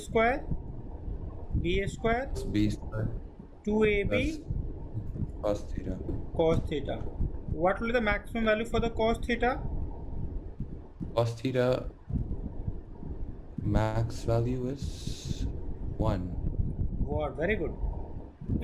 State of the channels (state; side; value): identical; both; correlation 1.00